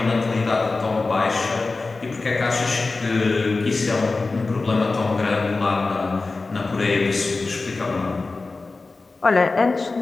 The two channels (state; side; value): quieter; right; 3.7 dB